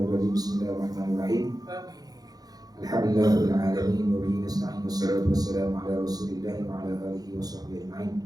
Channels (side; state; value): left; late; 0.19 ms